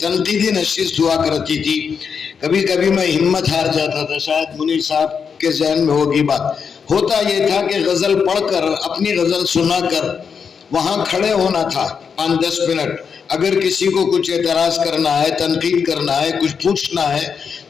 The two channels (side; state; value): right; quieter; 6.3 dB